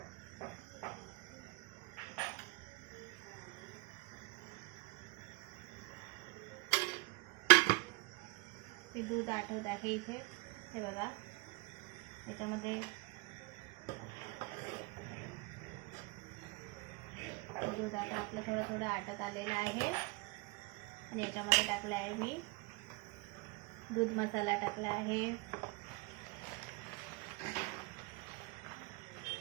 हे दूध आटवत आहे इथे, हे बघा. याच्यामध्ये दूध आता आपलं थोडं थोडं आटत आलेलं आहे आणि याच्यामध्ये टाकलं आहे मी दूध मसाला टाकला आहे,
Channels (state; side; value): quieter; left; 24.9 dB